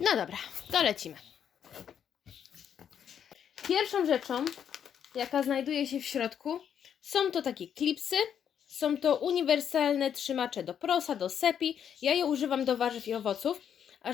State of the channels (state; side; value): quieter; right; 8.6 dB